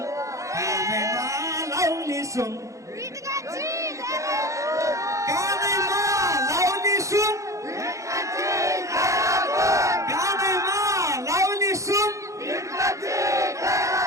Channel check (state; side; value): late; left; 0.15 ms